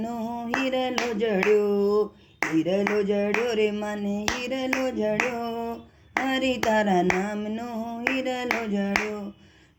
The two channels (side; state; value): both; identical; correlation 1.00